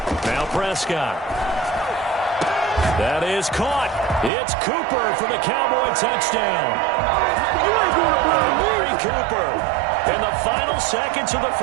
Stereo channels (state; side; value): drops out; left; at 4.3 s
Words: Now Prescott. That is caught. It's Cooper for the Cowboy touchdown. Amari Cooper in the final seconds of the